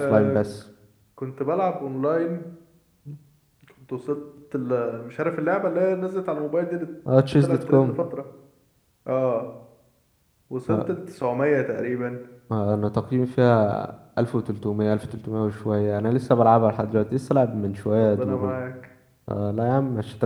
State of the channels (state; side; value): identical; both; correlation 1.00